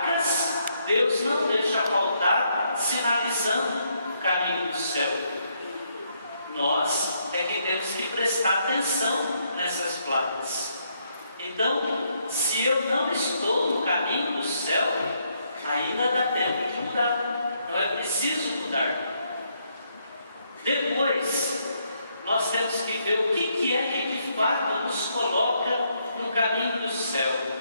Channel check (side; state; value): both; inverted; correlation -0.75